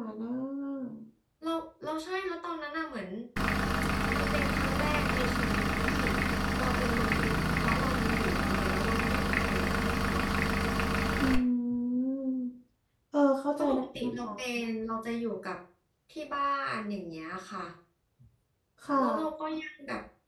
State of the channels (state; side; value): identical; both; correlation 1.00